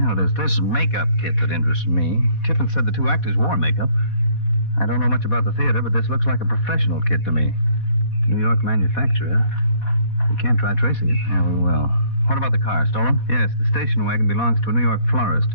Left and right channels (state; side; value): late; right; 4.1 ms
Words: there's this makeup kit that interests me. Tiffin said the 2 actors wore makeup. I don't know much about the theater, but this looks like a professional kit to me. New York manufacturer. We can't try tracing it. Yeah, we will. What about the car? Stolen? Yes, the station wagon belongs to a New York florist.